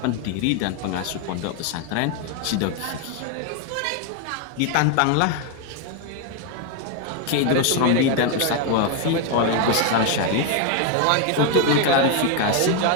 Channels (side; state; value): both; different; correlation 0.01